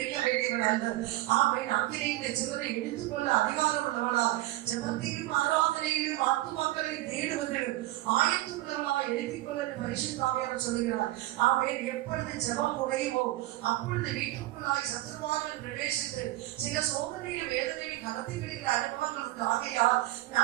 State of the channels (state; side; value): quieter; left; 17.1 dB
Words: வேண்டியவள் அல்ல. ஆமென் அக்கினியின் சிலரை எடுத்துக்கொள்ள அதிகாரம் உள்ளவளா ஜெபத்திலும் ஆராதனையிலும் ஆத்மாக்களை தேடுவதிலும் ஆயத்துள்ளவளா எழுதிக் கொள்ள பரிசுத்த ஆவியானவர் சொல்கிறார். ஆமென். எப்பொழுது ஜெபம் குறையுமோ அப்பொழுது வீட்டுக்குள்ளாய் சத்துருவார்கள் பிரவேசித்து சில சோதனையிலும் வேதனையிலும் கலத்தி விடுகிற அனுபவங்கள் உண்டு. ஆகையால்